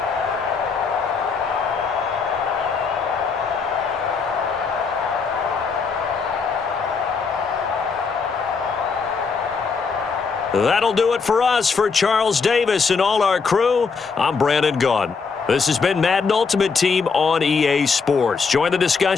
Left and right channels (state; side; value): quieter; right; 5.1 dB